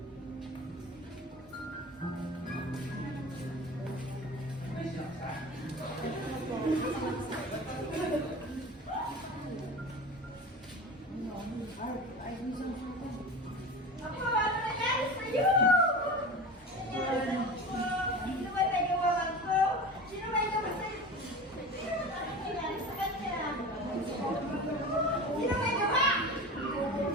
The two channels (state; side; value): normal; both; correlation 0.32